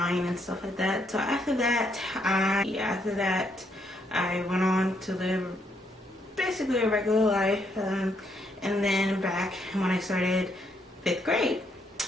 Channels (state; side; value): normal; both; correlation 0.74